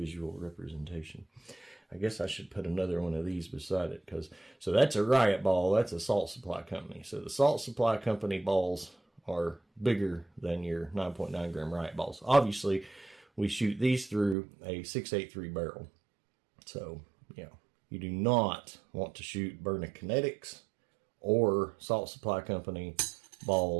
representation. I guess I should put another one of these beside it, because so that's a riot ball, that's a salt supply company. So the salt supply company balls are bigger than your 9.9 gram riot balls. Obviously, we shoot these through a 683 barrel. So, you know, you do not want to shoot Byrna Kinetics or Salt Supply Company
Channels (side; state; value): left; drops out; at 14.4 s